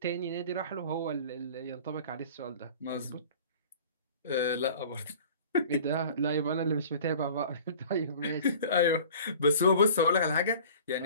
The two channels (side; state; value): both; inverted; correlation -0.45